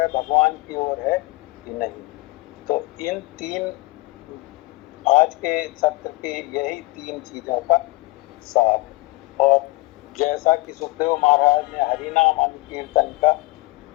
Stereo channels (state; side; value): quieter; right; 22.0 dB